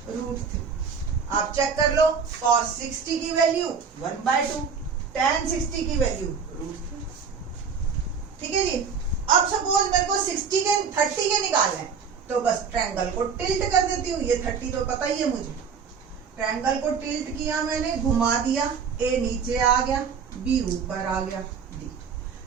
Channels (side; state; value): left; quieter; 6.1 dB